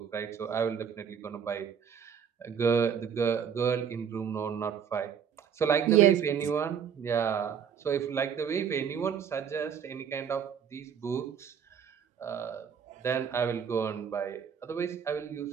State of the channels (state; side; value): quieter; left; 7.6 dB